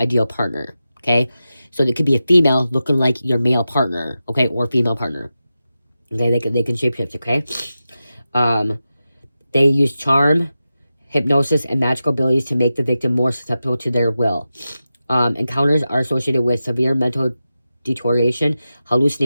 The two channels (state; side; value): inverted; both; correlation -0.92